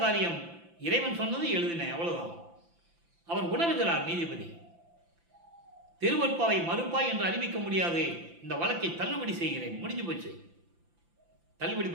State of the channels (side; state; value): left; late; 5.9 ms